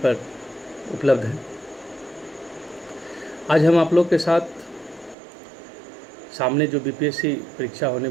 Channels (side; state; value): left; drops out; at 5.2 s